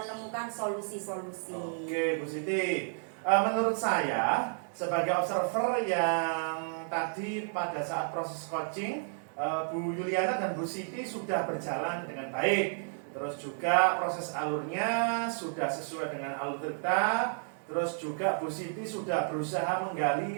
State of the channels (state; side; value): silent; left; digital silence